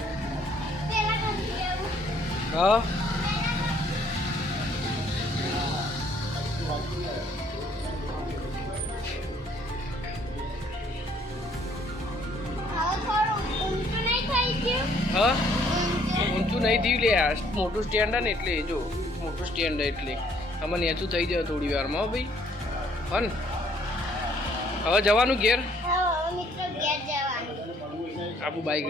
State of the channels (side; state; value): both; normal; correlation 0.63